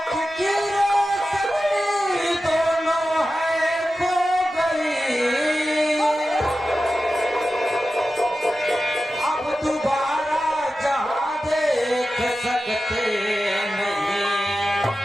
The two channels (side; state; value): both; normal; correlation 0.93